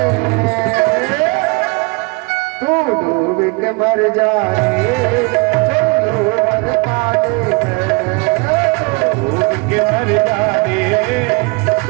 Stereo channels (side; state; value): left; quieter; 30.2 dB